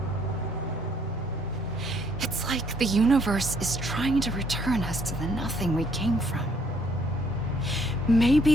It's like the universe is trying to return us to the nothing we came from.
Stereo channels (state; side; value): normal; both; correlation 0.66